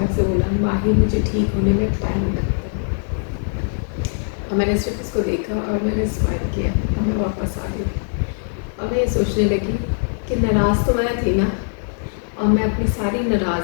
से बोला, माही मुझे ठीक होने में टाइम लगता है। और मैंने सिर्फ उसको देखा और मैंने स्माइल किया और मैं वापस आ गई। और मैं ये सोचने लगी कि नाराज़ तो मैं थी ना, और मैं अपनी सारी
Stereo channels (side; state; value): right; silent; 65 dB below the other